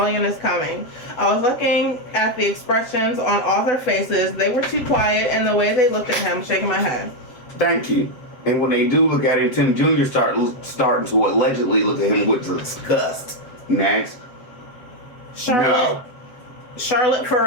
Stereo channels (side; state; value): right; late; 7.6 ms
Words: is coming. I was looking at the expressions on all their faces. They were too quiet, and the way they looked at him, shaking my head. Thank you. And when they do look at him, Tim Jr. starting to allegedly look at him with disgust. Next. Charlotte